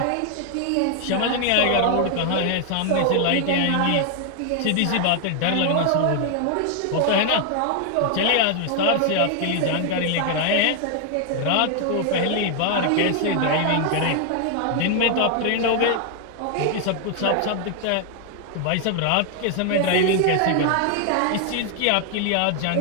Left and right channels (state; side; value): different; both; correlation 0.00